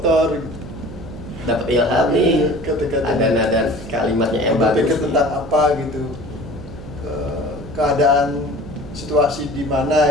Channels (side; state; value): right; noise; hum, 14 dB below the sound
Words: gitu. Dapat ilham nih, ada nada kalimatnya yang bagus. Berpikir tentang apa gitu, keadaan situasi di